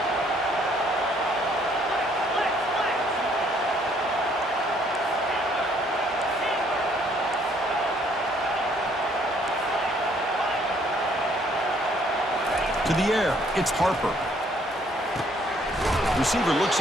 To the air, it's Harper. Receiver looks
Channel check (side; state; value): both; normal; correlation 0.65